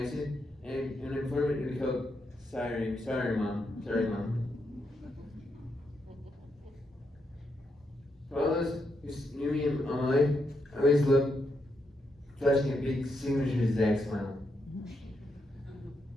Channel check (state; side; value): normal; both; correlation 0.81